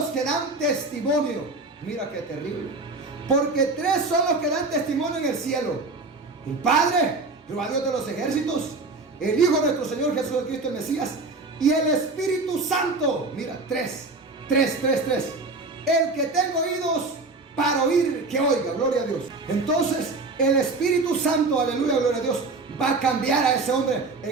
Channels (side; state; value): left; quieter; 3.5 dB